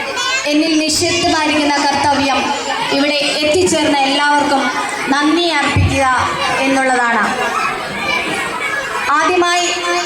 എന്നിൽ നിക്ഷിപ്തമായിരിക്കുന്ന കർത്തവ്യം ഇവിടെ എത്തിച്ചേർന്ന എല്ലാവർക്കും നന്ദി അർപ്പിക്കുക എന്നുള്ളതാണ്. ആദ്യമായി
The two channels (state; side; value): identical; both; correlation 1.00